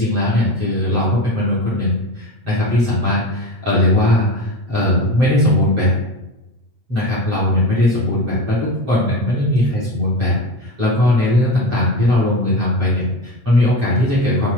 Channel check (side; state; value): left; late; 7.7 ms